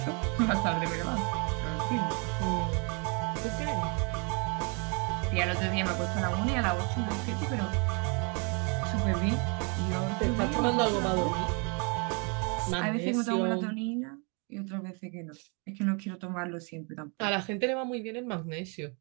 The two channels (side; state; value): left; quieter; 34.6 dB